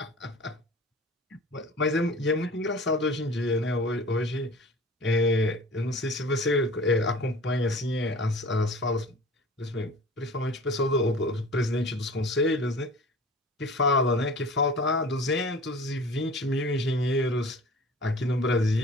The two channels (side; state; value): both; normal; correlation 0.42